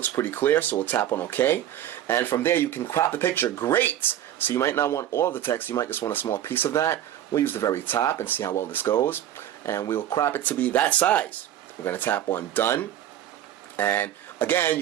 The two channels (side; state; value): left; quieter; 11.6 dB